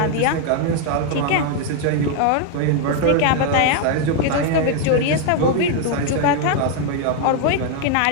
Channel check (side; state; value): both; different; correlation 0.00